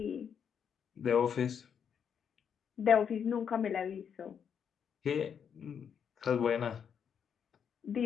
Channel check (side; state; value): right; quieter; 7.6 dB